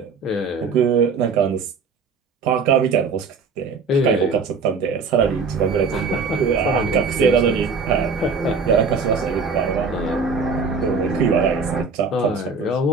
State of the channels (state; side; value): quieter; left; 4.7 dB